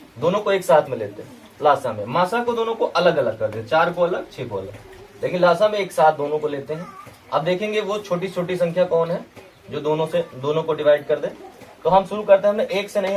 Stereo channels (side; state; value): both; identical; correlation 1.00